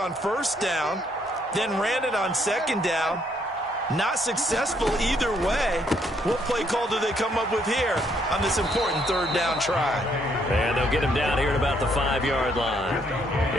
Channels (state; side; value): normal; both; correlation 0.70